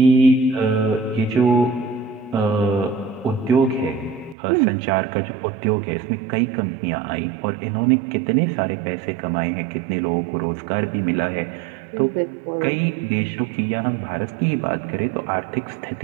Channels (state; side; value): drops out; left; at 4.4 s